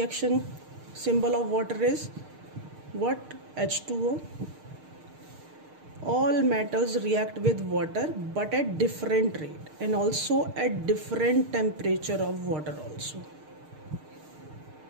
Symbol of water is what? H2O. All metals react with water but at different rate and also at different temperature of water also.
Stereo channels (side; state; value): left; late; 6.6 ms